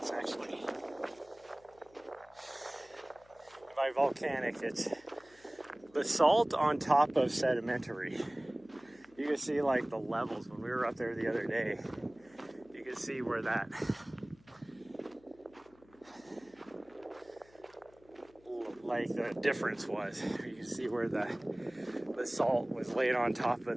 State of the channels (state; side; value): noise; left; hum, 28 dB below the sound